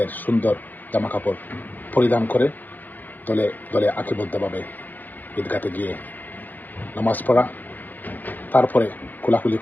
সুন্দর জামা কাপড় পরিধান করে দলে দলে আঁকিবদ্ধভাবে ঈদগাতে গিয়ে নামাজ পড়া, তারপরে খোলাখুলি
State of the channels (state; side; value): late; right; 0.085 ms